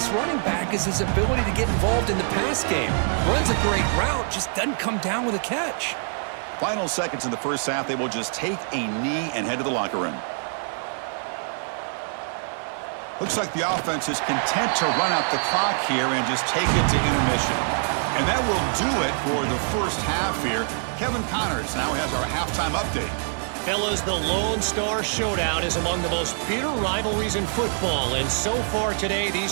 running back is his ability to get involved in the pass game. Runs a great route, just doesn't come down with a catch. Final seconds in the first half, they will just take a knee and head to the locker room. Looks like the offense is content to run out the clock here and just take it to intermission. And that will do it for the first half here. Kevin Connors now has our halftime update. Fellas, the Lone Star Showdown is among the most bitter rivalries in football, and so far today,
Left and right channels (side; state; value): left; silent; 62 dB below the other